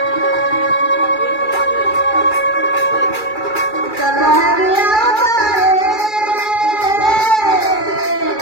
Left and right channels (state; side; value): late; right; 2.3 ms